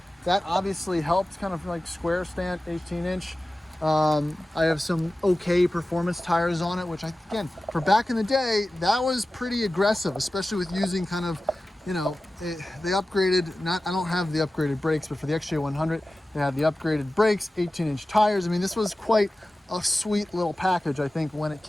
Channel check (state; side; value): normal; both; correlation 0.95